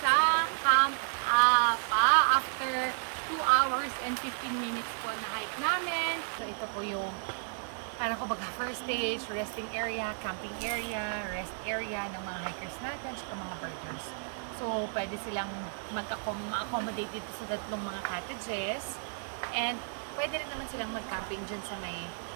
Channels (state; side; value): silent; left; 56 dB below the other